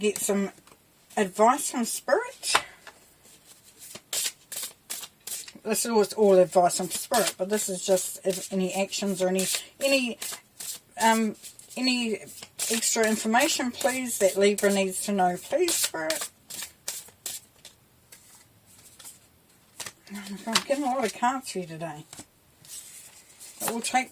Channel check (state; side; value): identical; both; correlation 1.00